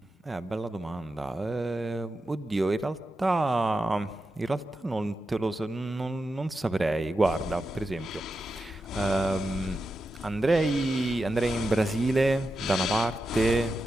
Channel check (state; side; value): normal; both; correlation 0.89